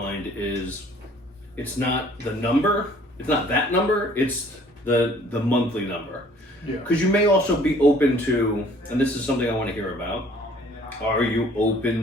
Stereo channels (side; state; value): both; normal; correlation 0.56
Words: is it's not the number, it's not that number, it's the monthly number. Yeah. Because you may also be open to, and this is something I want to hear about, are you